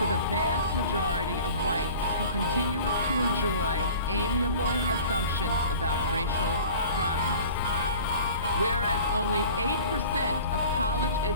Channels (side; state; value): both; inverted; correlation -0.42